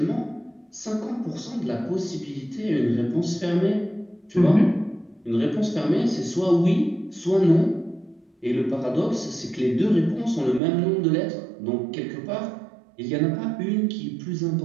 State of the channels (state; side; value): drops out; left; at 10.6 s